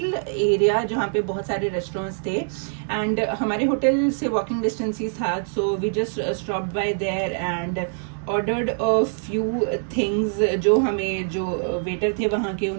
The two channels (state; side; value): silent; left; digital silence